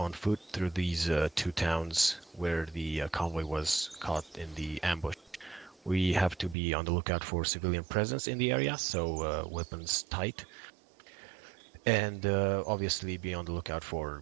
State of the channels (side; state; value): left; drops out; at 6.6 s